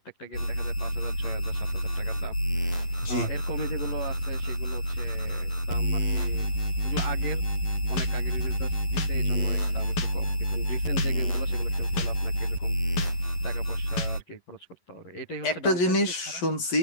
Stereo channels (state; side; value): late; right; 11 ms